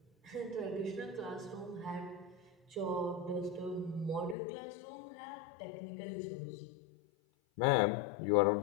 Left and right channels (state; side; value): drops out; right; at 4.4 s